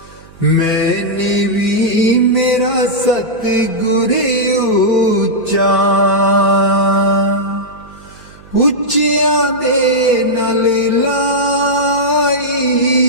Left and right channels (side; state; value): right; noise; hum, 24 dB below the sound